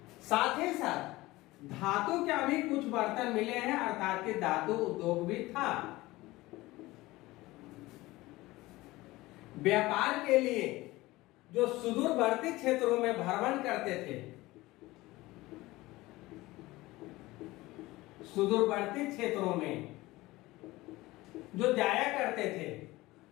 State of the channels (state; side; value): quieter; right; 19.3 dB